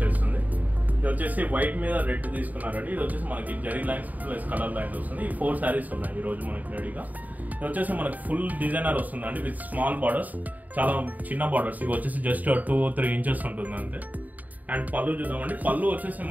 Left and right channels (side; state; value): left; late; 0.078 ms